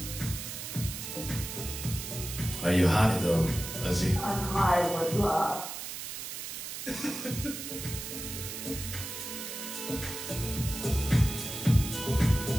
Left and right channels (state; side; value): noise; right; hiss, 7 dB below the sound